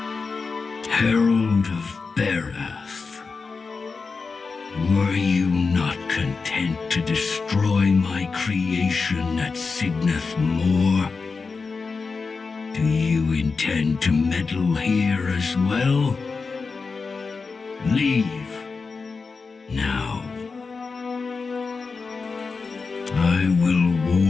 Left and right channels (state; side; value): quieter; right; 4.6 dB